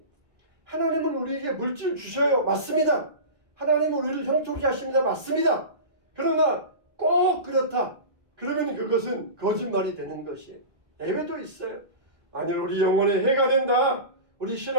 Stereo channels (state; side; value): late; left; 2.1 ms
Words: 하나님은 우리에게 물질 주셔요. 맞습니다. 하나님은 우리를 형통케 하십니다. 맞습니다. 그러나 꼭 그렇다. 그러면 그것은 거짓말이 되는 것이에요. 예외도 있어요. 만일 우리 영혼에 해가 된다, 우리